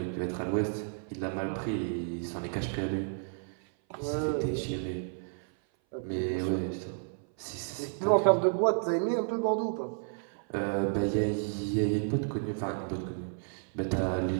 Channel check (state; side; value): silent; left; 57 dB below the other